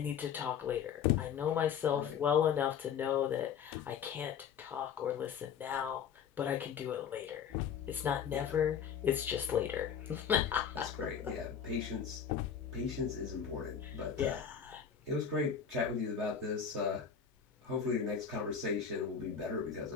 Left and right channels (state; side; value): quieter; right; 7.6 dB